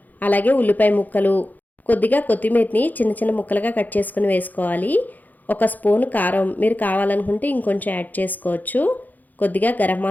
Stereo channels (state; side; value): late; right; 0.083 ms